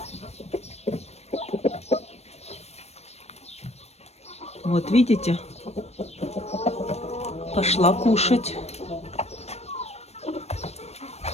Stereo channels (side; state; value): right; late; 0.31 ms